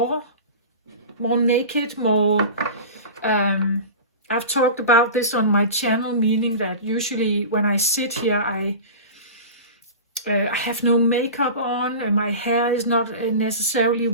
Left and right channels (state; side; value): inverted; both; correlation -0.32